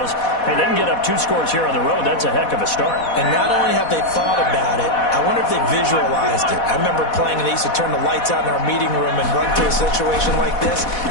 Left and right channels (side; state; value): right; late; 4.1 ms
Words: Hey, they can get up 2 scores here on the road. That's a heck of a start. And not only have they thought about it, I wonder if they visualized it. I remember playing, and they used to turn the lights out in our meeting room and run through a situation like this